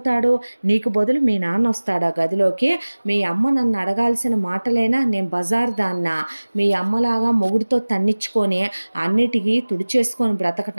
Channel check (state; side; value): inverted; both; correlation -1.00